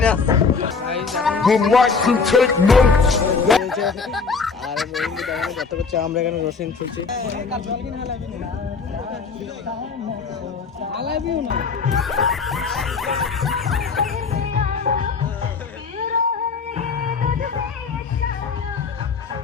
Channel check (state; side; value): quieter; right; 5.0 dB